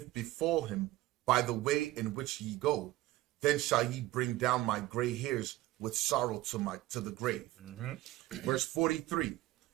befall him by the way in which ye go, then shall ye bring down my gray hairs with sorrow to the grave. Verse 43.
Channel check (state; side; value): quieter; left; 16.8 dB